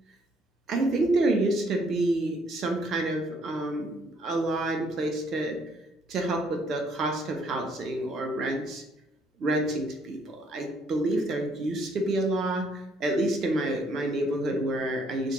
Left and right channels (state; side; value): normal; both; correlation 0.67